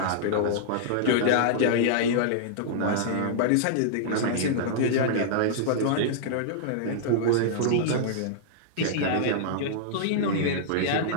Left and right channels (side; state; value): both; different; correlation -0.02